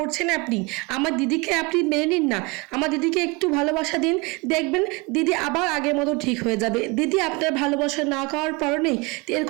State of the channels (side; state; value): left; quieter; 26.3 dB